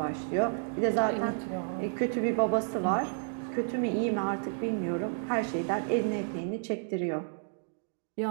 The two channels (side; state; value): left; silent; digital silence